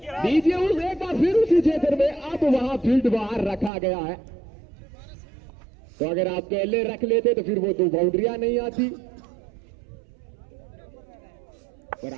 उस एक बार फिर उसी क्षेत्र में, अब वहां फील्ड बाहर रखा गया है। तो अगर आप पहले रख लेते तो फिर वो 2 बाउंड्रियां नहीं आती, पर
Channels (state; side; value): drops out; left; at 3.7 s